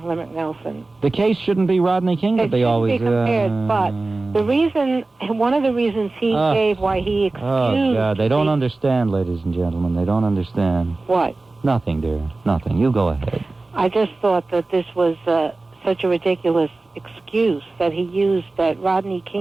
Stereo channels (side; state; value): left; quieter; 3.3 dB